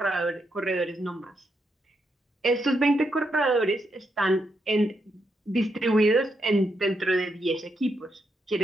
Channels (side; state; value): both; normal; correlation 0.81